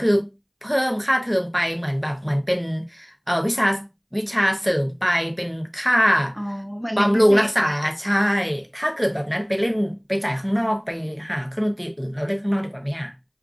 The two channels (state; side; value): identical; both; correlation 1.00